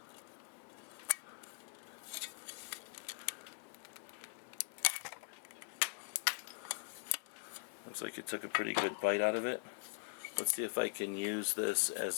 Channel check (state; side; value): silent; right; digital silence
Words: Looks like it took a pretty good bite out of it. Let's see if I can use this